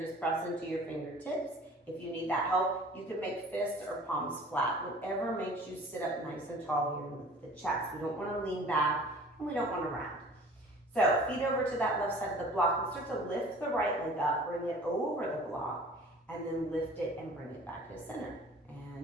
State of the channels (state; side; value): normal; both; correlation 0.47